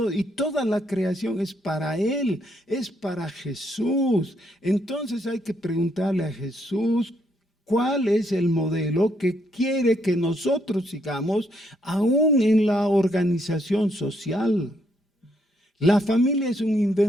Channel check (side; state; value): both; normal; correlation 0.74